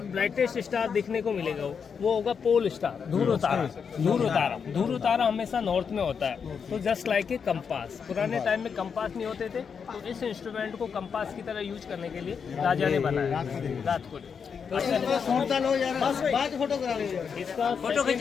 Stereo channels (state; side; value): quieter; right; 6.4 dB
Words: ब्राइटेस्ट स्टार दिखने को मिलेगा, वो होगा पोल स्टार, ध्रुव तारा। ध्रुव तारा हमेशा नॉर्थ में होता है। तो जस्ट लाइक ए कंपास, पुराने टाइम में कंपास नहीं होते थे तो इस इंस्ट्रूमेंट को कंपास की तरह यूज करने के लिए राजा ने बनाया रात को। इसका फोटो खींच